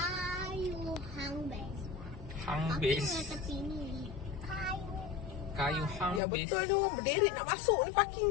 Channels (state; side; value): drops out; right; at 6.2 s